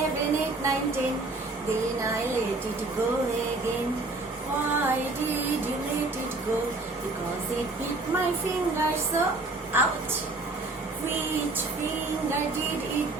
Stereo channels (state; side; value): quieter; left; 3.2 dB